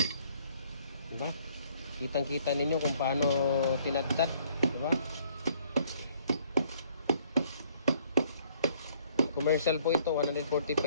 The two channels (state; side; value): inverted; both; correlation -0.62